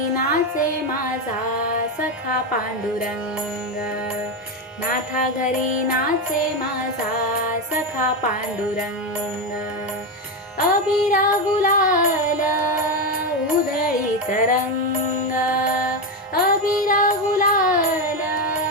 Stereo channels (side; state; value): both; normal; correlation 0.11